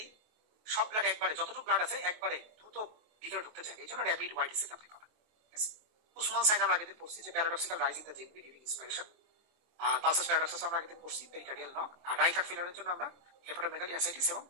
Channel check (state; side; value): late; left; 23 ms